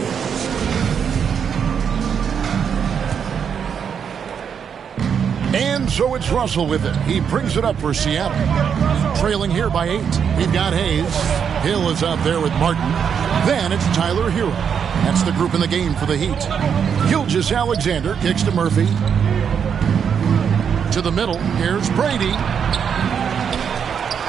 And so it's Russell with it. He brings it up for Seattle. Trailing here by 8. We've got Hayes. Hill is out there with Martin. Then it's Tyler Hero. That's the group in the game for the Heat. Gilgeous-Alexander kicks to Murphy. To the middle. Here's Brady.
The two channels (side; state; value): left; quieter; 7.4 dB